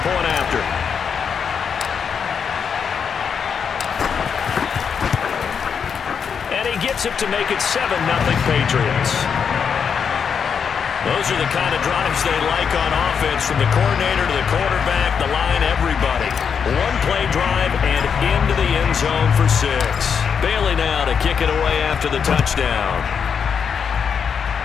point after. And he gets it to make it 7-0 Patriots. Those are the kind of drives they like on offense, from the coordinator to the quarterback, the line, everybody. One-play drive and into the end zone for 6. Bailey now to kick it away after the touchdown.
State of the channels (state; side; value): quieter; right; 6.8 dB